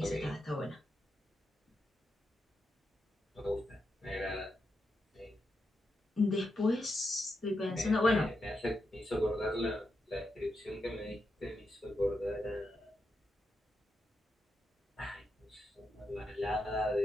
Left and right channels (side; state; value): both; normal; correlation 0.85